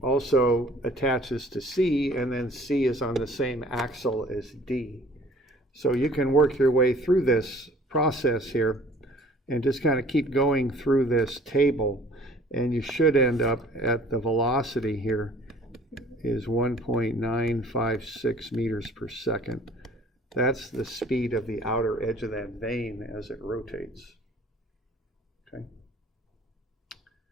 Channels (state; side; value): normal; both; correlation 0.52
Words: also attaches to C, and then C is on the same axle as D. So you can work your way through this process here and just kind of keep going through this table, and you should end up at the velocity here is 1.956 meters per second. That's the speed of the outer edge of that vane as it rotates. Okay.